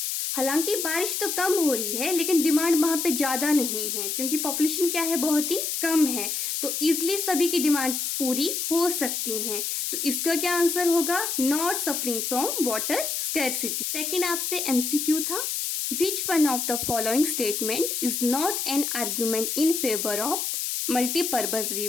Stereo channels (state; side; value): noise; left; hiss, 2 dB below the sound